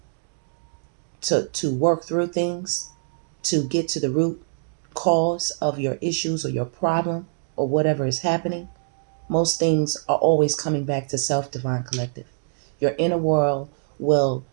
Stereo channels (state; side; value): silent; left; digital silence